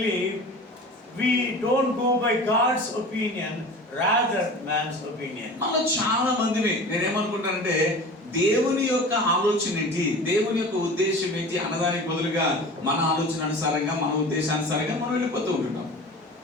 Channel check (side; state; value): both; normal; correlation 0.37